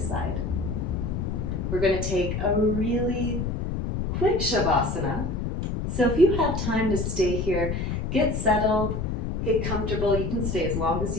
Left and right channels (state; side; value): noise; left; rumble, 2 dB below the sound